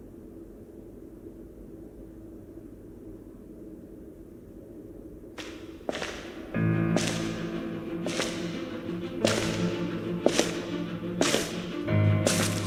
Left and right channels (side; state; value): both; identical; correlation 1.00